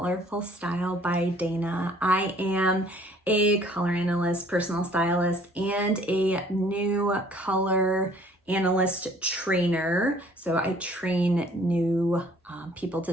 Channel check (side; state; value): both; normal; correlation 0.57